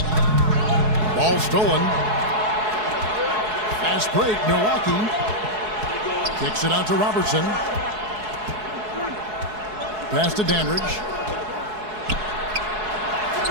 Ball stolen. Fast break, Milwaukee. Kicks it out to Robertson. Pass to Dandridge.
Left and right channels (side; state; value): left; late; 4.7 ms